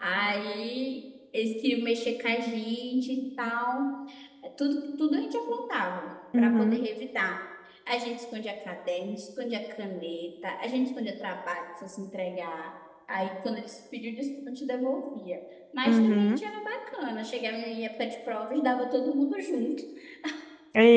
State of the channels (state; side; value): identical; both; correlation 1.00